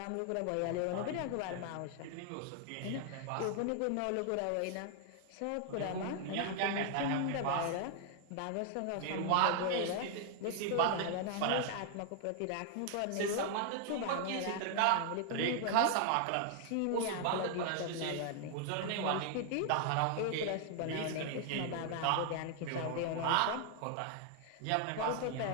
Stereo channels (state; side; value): different; both; correlation 0.00